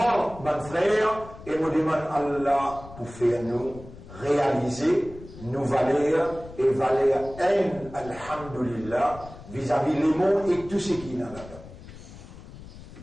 mon frère, et me demande Allah pour faire nous réaliser nos valeurs et valeurs alhamdulillah, vis-à-vis les mondes et tout ce qui est là-dedans.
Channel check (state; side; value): noise; left; rumble, 16 dB below the sound